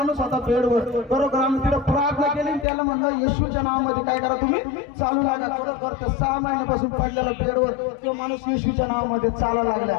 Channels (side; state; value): right; drops out; at 2.7 s